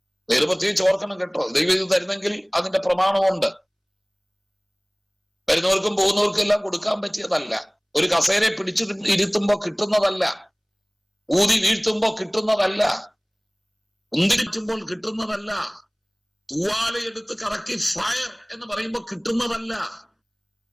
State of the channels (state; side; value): identical; both; correlation 1.00